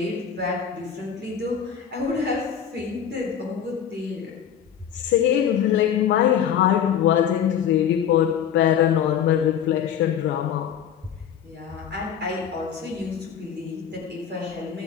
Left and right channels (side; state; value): right; quieter; 8.7 dB